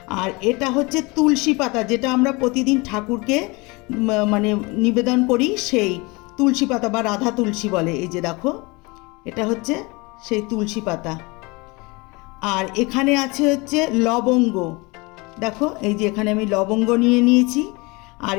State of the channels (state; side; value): quieter; right; 25.9 dB